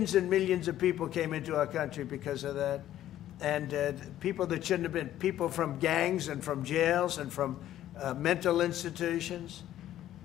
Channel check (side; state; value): right; quieter; 12.6 dB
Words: and millions of people came into our country because of that. And people that shouldn't have been, people from gangs and from jails and from mental institutions,